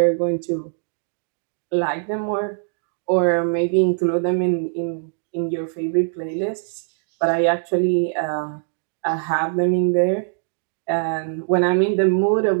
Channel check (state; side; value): silent; left; 64 dB below the other